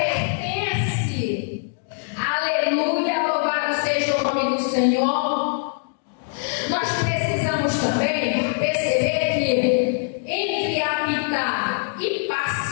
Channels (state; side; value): silent; right; digital silence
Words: Aleluia, louvado seja o nome do Senhor. Nós precisamos também perceber que entre habitar e